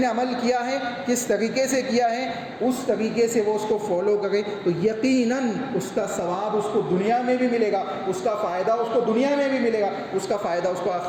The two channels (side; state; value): both; identical; correlation 1.00